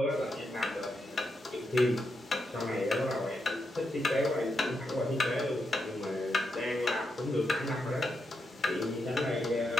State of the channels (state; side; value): normal; both; correlation 0.84